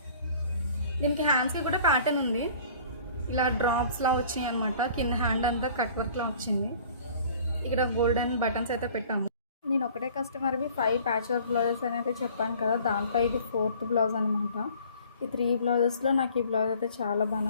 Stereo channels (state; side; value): inverted; both; correlation -0.51